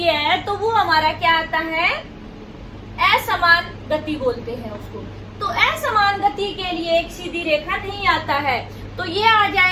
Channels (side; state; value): both; identical; correlation 1.00